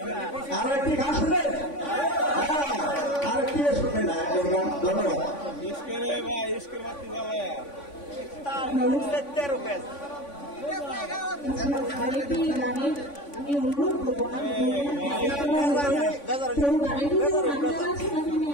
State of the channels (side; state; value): right; late; 3.5 ms